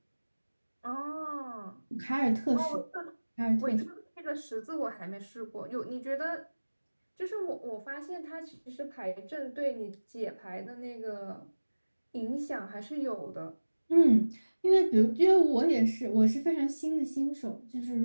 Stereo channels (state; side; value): inverted; both; correlation -1.00